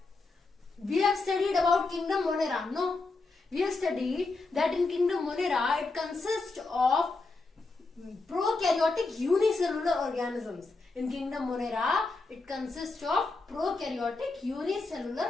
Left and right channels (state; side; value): quieter; right; 3.6 dB